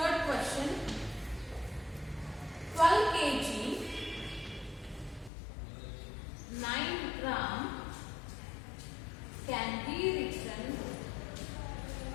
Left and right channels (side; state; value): right; drops out; at 5.3 s